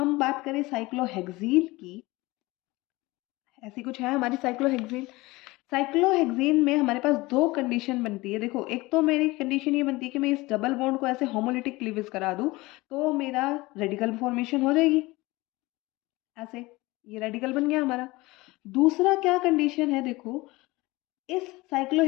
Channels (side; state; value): right; quieter; 21.2 dB